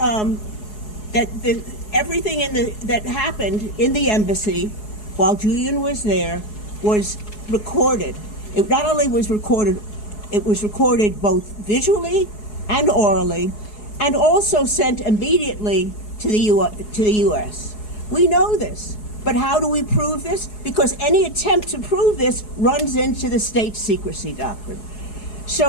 everything that happened in the embassy while Julian was there was recorded. It not only was recorded, it was recorded both visually and orally, and also sent immediately to the U.S. We know this, but how do we prove this? Because any attempt to prove this runs into the state secrecy doctrine.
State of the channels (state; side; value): late; right; 4.7 ms